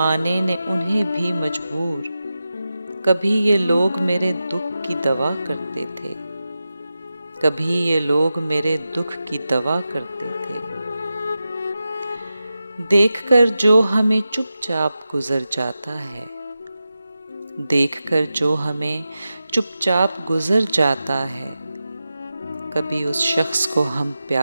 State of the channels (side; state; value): both; inverted; correlation -0.92